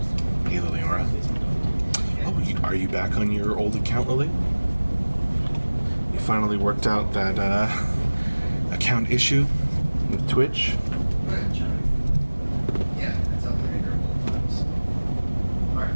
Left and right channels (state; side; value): inverted; both; correlation -1.00